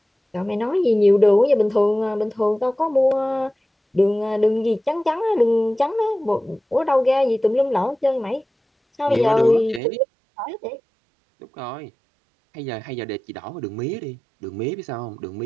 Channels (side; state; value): left; drops out; at 9.8 s